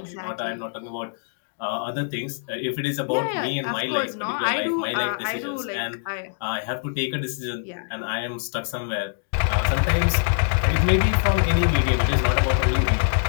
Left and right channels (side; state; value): right; silent; digital silence